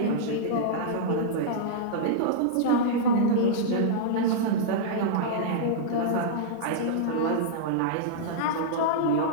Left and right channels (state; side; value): different; both; correlation -0.02